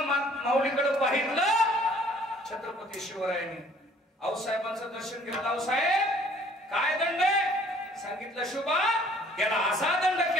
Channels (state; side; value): normal; both; correlation 0.57